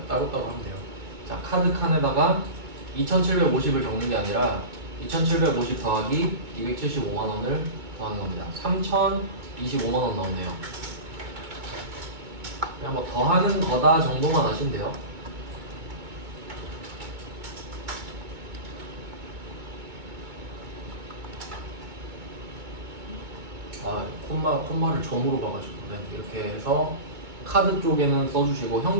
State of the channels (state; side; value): late; left; 2.2 ms